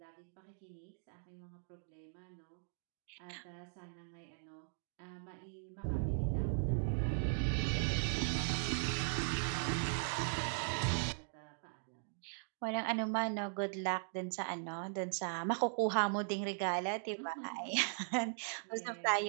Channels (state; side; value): silent; left; digital silence